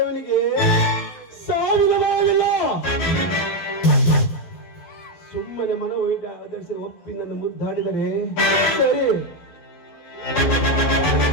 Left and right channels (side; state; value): right; late; 12 ms